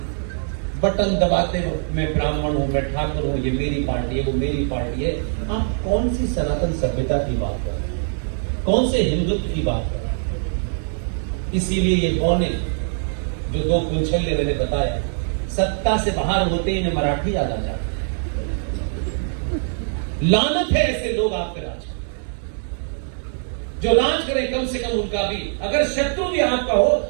बटन दबाते हो, मैं ब्राह्मण हूं, मैं ठाकुर हूं, ये मेरी पार्टी है, वो मेरी पार्टी है। आप कौन सी सनातन सभ्यता की बात कर रहे हैं? कौन से हिंदुत्व की बात कर रहे हैं? इसीलिए ये बौने जो 2 कुंछल्य मैंने बताया, सत्ता से बाहर होते ही इन्हें मराठी याद आ जाता है। लानत है ऐसे लोग आपके राज, जो राज करें कम से कम उनका भी, अगर शत्रु भी आपका हो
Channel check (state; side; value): silent; left; digital silence